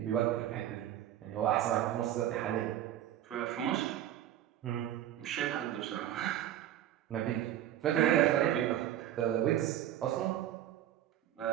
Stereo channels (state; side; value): quieter; left; 11.9 dB